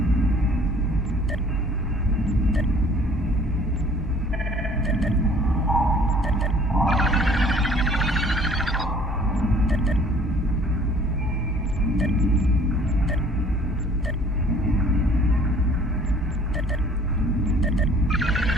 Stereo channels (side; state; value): both; normal; correlation 0.55